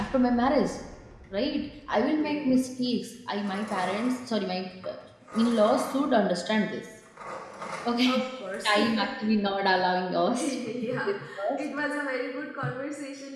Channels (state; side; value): identical; both; correlation 1.00